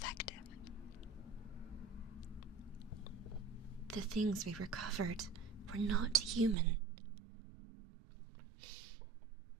The things we recovered were not human.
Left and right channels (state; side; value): drops out; left; at 6.6 s